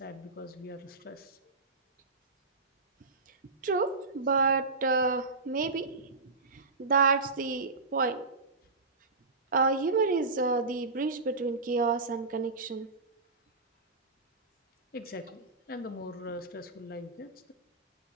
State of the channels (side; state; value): left; quieter; 3.7 dB